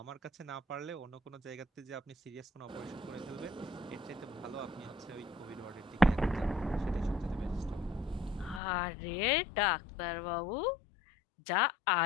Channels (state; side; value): drops out; right; at 8.6 s